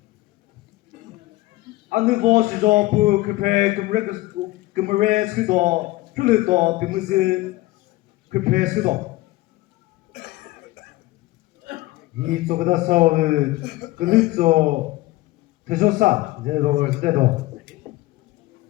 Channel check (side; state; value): right; quieter; 18.7 dB